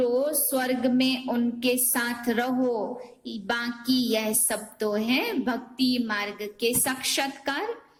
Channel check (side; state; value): both; identical; correlation 1.00